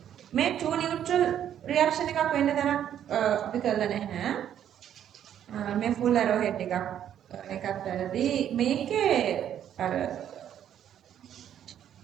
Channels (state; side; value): quieter; left; 10.1 dB